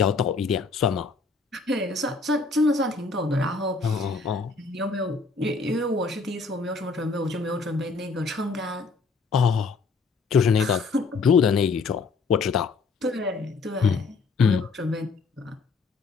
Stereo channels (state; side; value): quieter; right; 4.3 dB